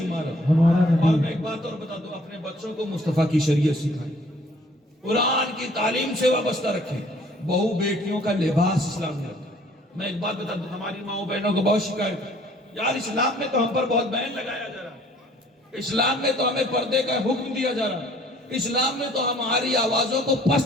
ہمارا اور نبی، میں ایک بات اور بتا دوں، اپنے بچوں کو مصطفیٰ کی شریعت سکھائیں، قرآن کی تعلیم سے وابستہ رکھیں، بہو بیٹیوں کا لباس اسلام نے رکھا۔ میں ایک بات بتا دوں، ہماری ماؤں بہنوں کو بہت شکایت ہے، یار اسلام میں تو ہم پر بہت بین لگایا جا رہا ہے، اسلام میں تو ہمیں پردے کا حکم دیا جا رہا ہے، اسلام میں تو ہماری آوازوں کو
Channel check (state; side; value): normal; both; correlation 0.57